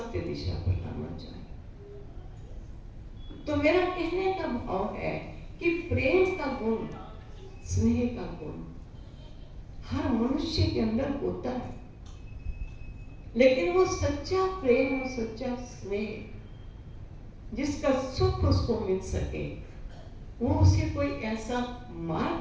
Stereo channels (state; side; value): identical; both; correlation 1.00